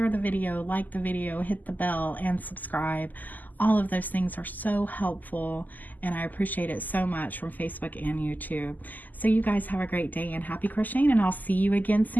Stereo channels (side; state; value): right; late; 0.083 ms